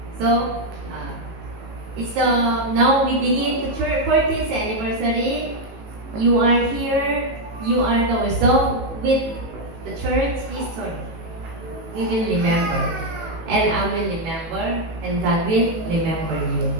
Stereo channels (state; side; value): late; left; 18 ms